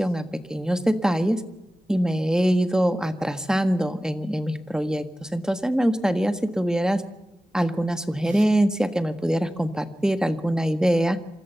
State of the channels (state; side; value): normal; both; correlation 0.96